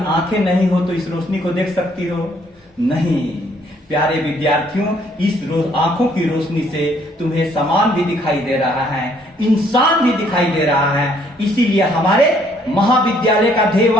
आंखें नहीं हो तो इस रोशनी को देख सकती हो? नहीं। प्यारे विद्यार्थियों, इस आंखों की रोशनी से तुम्हें समान भी दिखाई दे रहा है, इंसान भी दिखाई दे रहा है। इसीलिए हमारे महाविद्यालय का ध्येय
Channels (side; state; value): both; normal; correlation 0.65